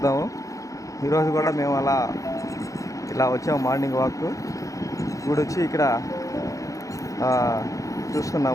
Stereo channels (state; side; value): late; right; 0.16 ms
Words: ఈరోజు కూడా మేము ఇలా వచ్చాము మార్నింగ్ వాక్. ఇప్పుడు వచ్చి ఇక్కడ